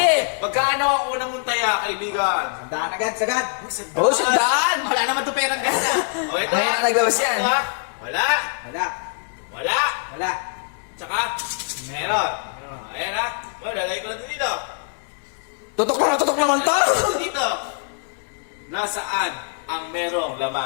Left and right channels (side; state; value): right; silent; 63 dB below the other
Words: Magkano ang unang mong taya, kaibigan? Sandaan agad, sagad. Oh, sandaan. Wala naman to perang ganda. O ito. Ngayon na naglabas yan. Ito, wala. Wala. Wala. Wala. Tsaka, meron. Ayan ha. O, lalagay ko na dito. Tutok naman to. Dito. Nasaan ang merong